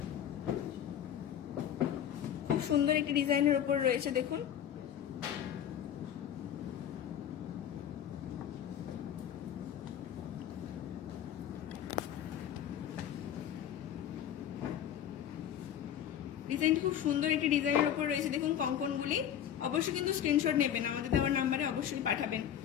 খুব সুন্দর একটি ডিজাইনের উপর রয়েছে। দেখুন ডিজাইনটি খুব সুন্দর একটি ডিজাইনের উপর রয়েছে। দেখুন কঙ্কনগুলি, অবশ্যই কিন্তু স্ক্রিনশট নেবেন, আমাদের দেওয়ার নাম্বারে অবশ্যই পাঠাবেন।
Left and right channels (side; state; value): right; quieter; 9.9 dB